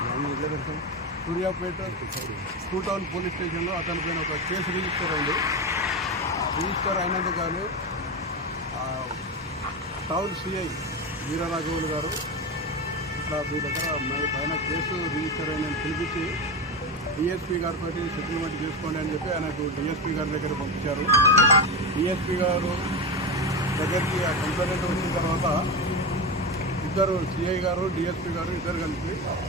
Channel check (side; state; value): both; normal; correlation 0.19